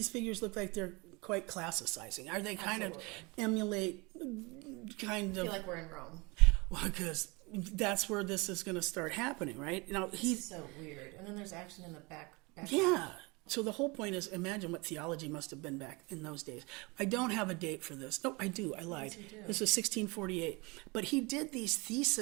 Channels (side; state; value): left; quieter; 26.8 dB